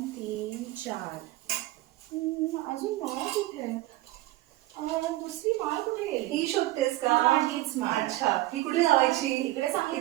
3 4 अजून माळा कुठे आहे? दुसरी माळ कुठे गेली? ही शोधतेस का? हीच माळ. अच्छा, ही कुठे लावायची? इकडे चांगली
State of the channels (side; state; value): left; quieter; 17.3 dB